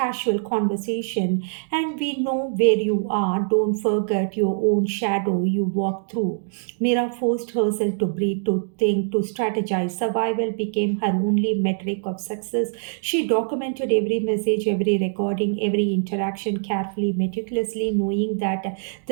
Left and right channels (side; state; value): left; silent; digital silence